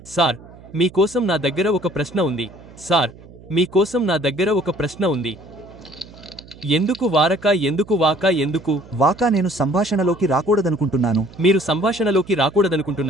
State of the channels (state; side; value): noise; right; hum, 21 dB below the sound